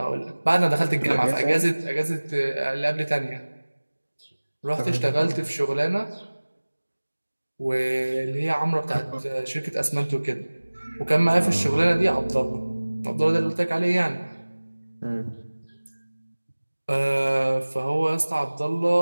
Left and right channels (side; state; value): both; inverted; correlation -1.00